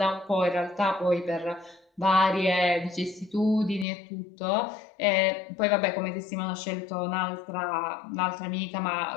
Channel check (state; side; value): drops out; right; at 3.9 s